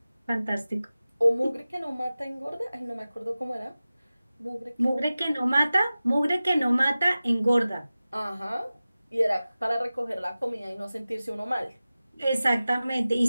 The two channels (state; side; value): inverted; both; correlation -0.96